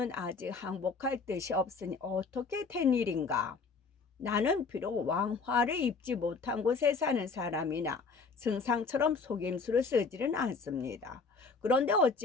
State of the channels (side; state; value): right; quieter; 4.6 dB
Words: 아직 항복할 뜻이 없으니 어떻게 된 일인가? 나는 비록 왕화를 입지 못한 곳에 사는 사람이나 승상처럼 속임수를 쓰지는 않습니다. 그런데